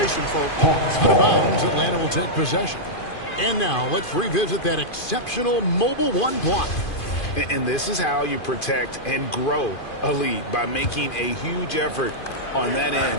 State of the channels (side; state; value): right; late; 2.5 ms